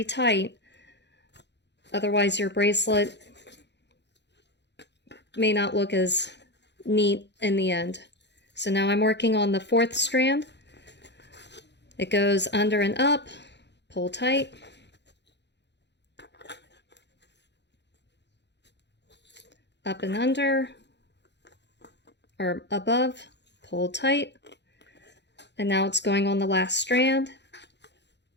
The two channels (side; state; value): right; late; 0.50 ms